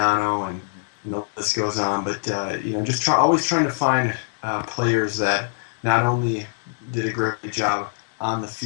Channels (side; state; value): right; silent; digital silence